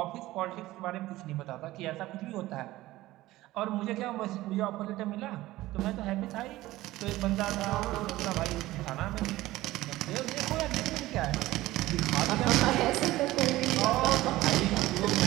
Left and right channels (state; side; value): quieter; left; 17.1 dB